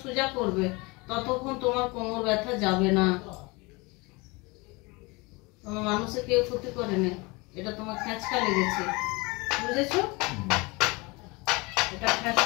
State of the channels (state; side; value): quieter; right; 25.8 dB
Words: সোজা করবে ততক্ষণ তোমার কোমর ব্যথা যাবে না। তোমার মানুষের কেউ ক্ষতি করেনি, এটা তোমার খেঁচকা লেগেছে, বুঝেছো? এটা